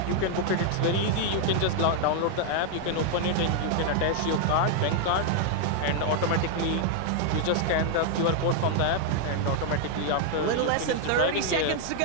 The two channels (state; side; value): different; both; correlation 0.00